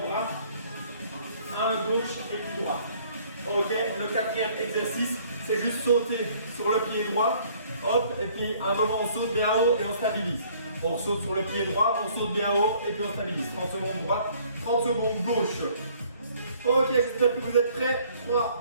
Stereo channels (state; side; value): inverted; both; correlation -0.59